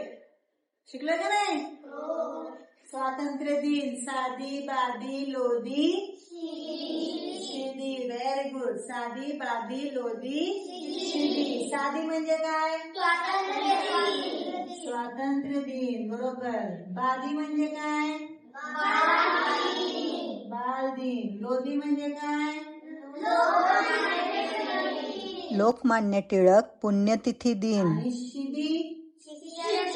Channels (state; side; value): identical; both; correlation 1.00